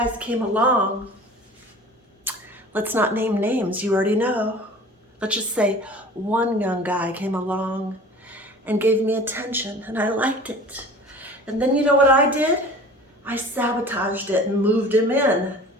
came along. Let's not name names, you already know. Let's just say one young guy came along and gave me attention, and I liked it. And then you know what I did? I sabotaged it and moved him in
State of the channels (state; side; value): normal; both; correlation 0.43